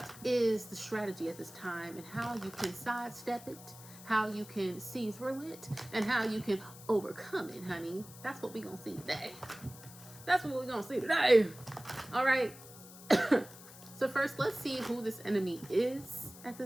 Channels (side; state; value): left; noise; hiss, 18 dB below the sound